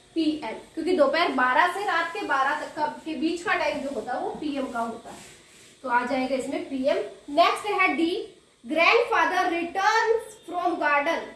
पीएम, क्योंकि दोपहर 12 से रात के 12 तक के बीच का टाइम जो होता है वो पीएम का होता है। तो आ जाएगा इसमें पीएम। नेक्स्ट है D, grandfather returns from garden,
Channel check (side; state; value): both; identical; correlation 1.00